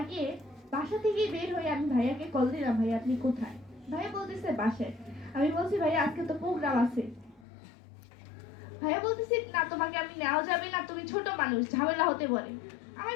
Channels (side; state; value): right; drops out; at 7.5 s